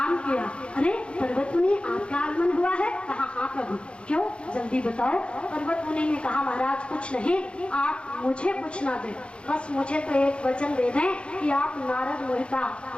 किया। अरे पर्वत मुनि आपका आगमन हुआ है? कहा हाँ प्रभु। क्यों? जल्दी बताओ। पर्वत मुनि ने कहा महाराज कुछ नहीं, आप मुझे कुछ ना दें, बस मुझे तो एक वचन दे दें कि आप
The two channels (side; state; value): right; late; 0.057 ms